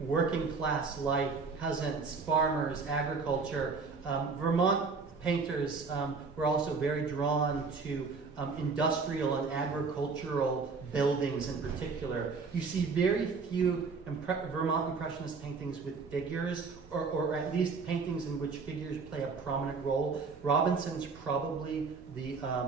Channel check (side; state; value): left; quieter; 4.7 dB